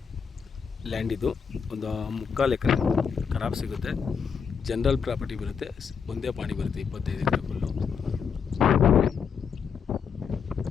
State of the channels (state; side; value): quieter; right; 6.5 dB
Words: land. ಇದು ಒಂದು 3/4 ಎಕರೆ ಖರಾಬ್ ಸಿಗುತ್ತೆ. ಜನರಲ್ ಪ್ರಾಪರ್ಟಿ ಬರುತ್ತೆ, ಒಂದೇ ಪಾಣಿ ಬರುತ್ತೆ. 25 ಎಕರೆ ಫುಲ್ಲು.